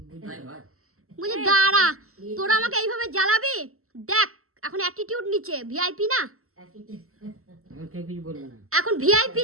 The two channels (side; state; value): left; late; 0.63 ms